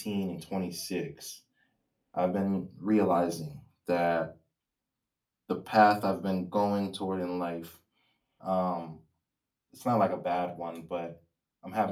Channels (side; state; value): both; identical; correlation 1.00